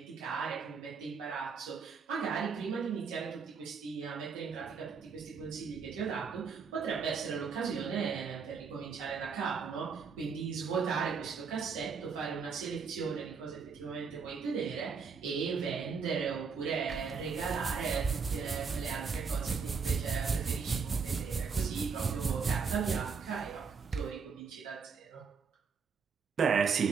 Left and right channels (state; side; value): quieter; left; 5.6 dB